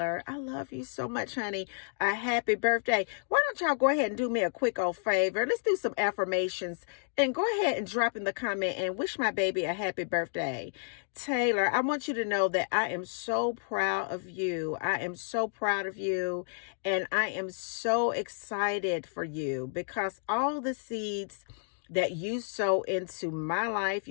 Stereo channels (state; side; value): silent; right; digital silence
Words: I love you so much, honey, a happy birthday. Why don't y'all go ahead and do me a quick old favor? Let's do some affirmations and go ahead and drop in the comment and wish my baby a happy birthday. Taylor, I want you to know that I am so proud of you. I am so proud of you. And I am so excited for you because all the seeds that you sow into my life,